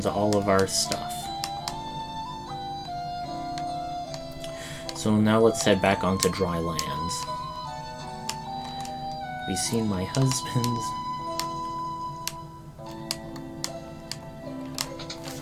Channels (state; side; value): identical; both; correlation 1.00